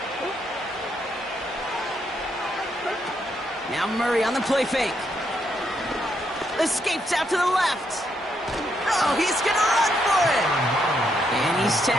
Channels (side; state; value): both; normal; correlation 0.77